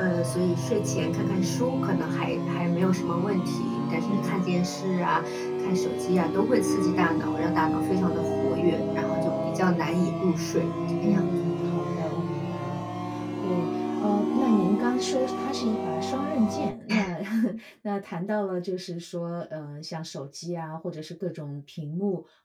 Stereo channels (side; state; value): both; identical; correlation 1.00